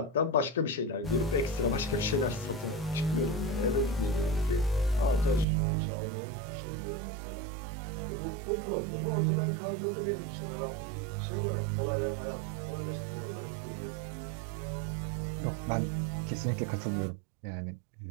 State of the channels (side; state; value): left; drops out; at 5.5 s